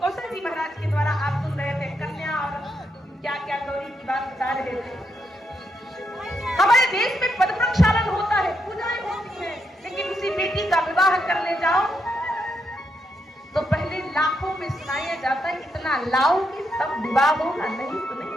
जी महाराज के द्वारा आप सुन रहे थे, कन्या और क्या क्या गौरी की बात बता रहे थे। हमारे देश में पद प्रक्षालन होता है, पूजाएं होती है, लेकिन उसी बेटी का विवाह करने जाओ तो पहले लाखों में सुनाया जाता है, इतना लाओ कि सब विवाह होगा, नहीं तो नहीं।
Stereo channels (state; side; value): normal; both; correlation 0.80